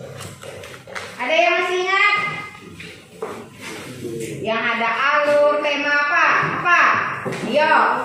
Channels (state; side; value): identical; both; correlation 1.00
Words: Ada yang masih ingat? Yang ada alur, tema apa? Apa? Yo.